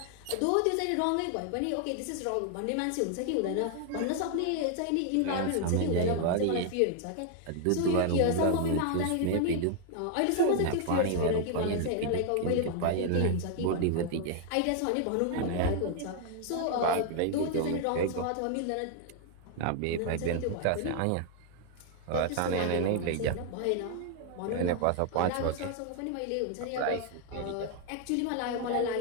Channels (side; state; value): both; different; correlation 0.00